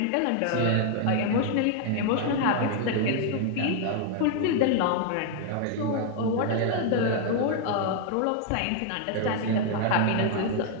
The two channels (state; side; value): different; both; correlation 0.00